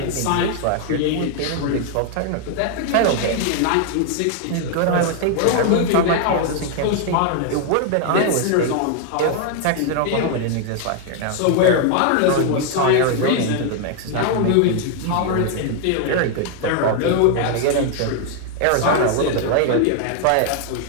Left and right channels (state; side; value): different; both; correlation 0.00